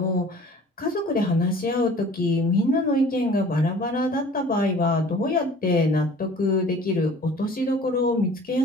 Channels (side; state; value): both; normal; correlation 0.48